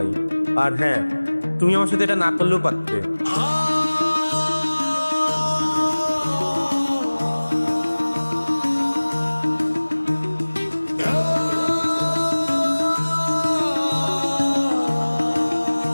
আর হ্যাঁ, তুমি আমার সাথে এটা না করলেও পারতে।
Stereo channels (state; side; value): inverted; both; correlation -1.00